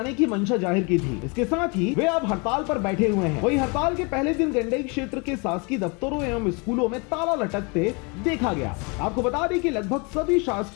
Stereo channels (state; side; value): quieter; right; 31.2 dB